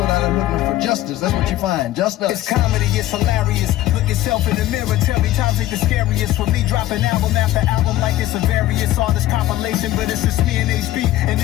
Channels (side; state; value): right; quieter; 14.9 dB